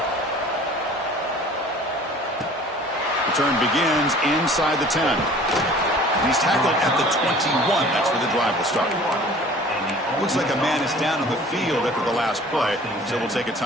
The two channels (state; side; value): normal; both; correlation 0.47